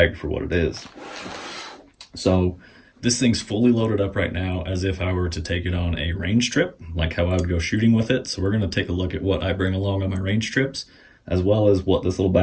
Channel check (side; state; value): both; identical; correlation 1.00